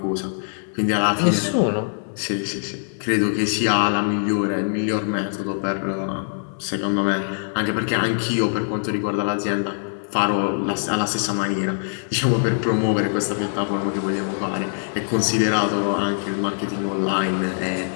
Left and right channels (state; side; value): silent; right; 64 dB below the other